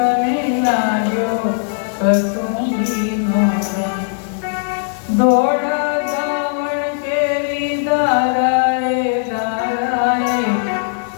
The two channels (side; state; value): right; silent; 65 dB below the other